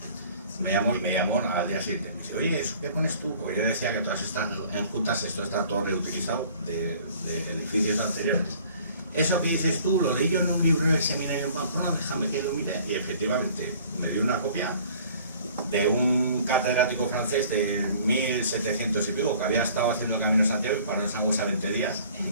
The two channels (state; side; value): inverted; both; correlation -0.52